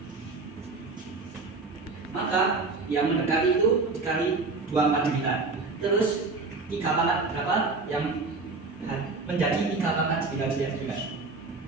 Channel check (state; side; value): quieter; left; 3.9 dB